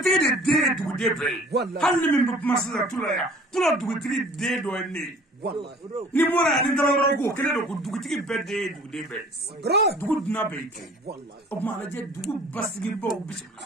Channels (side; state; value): both; normal; correlation 0.49